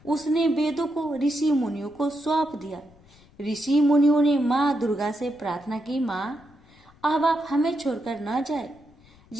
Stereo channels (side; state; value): left; noise; rumble, 27 dB below the sound